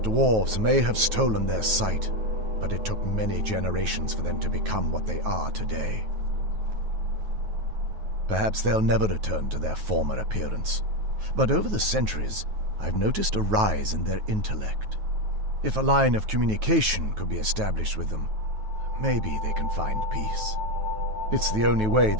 may have stolen their sight, but it took many generations for them to become what they are today. Perhaps they'll never return to their former appearance, but over the centuries, I've noticed a rise in their intellect. If a line of communication could be established with them, maybe they can find peace. It's the only way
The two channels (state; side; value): late; left; 9.3 ms